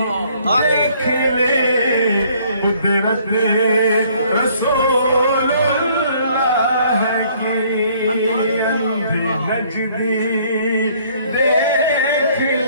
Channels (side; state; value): both; inverted; correlation -0.61